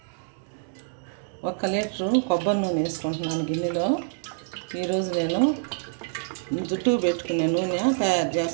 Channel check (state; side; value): silent; left; digital silence